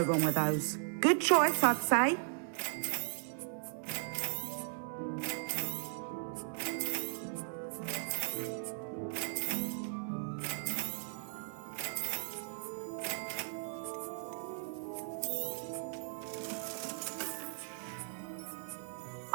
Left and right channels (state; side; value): silent; left; 53 dB below the other